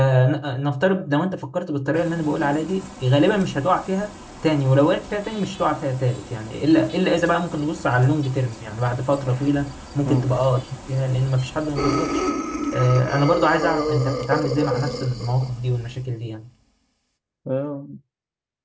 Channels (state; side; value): identical; both; correlation 1.00